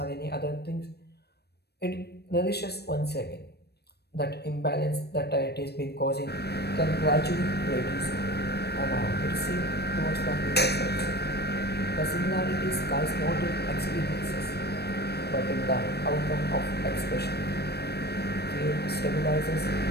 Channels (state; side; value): late; right; 0.47 ms